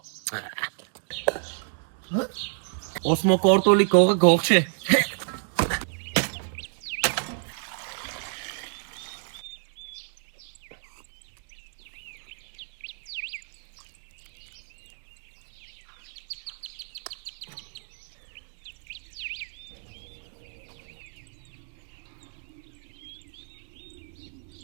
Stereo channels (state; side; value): silent; left; digital silence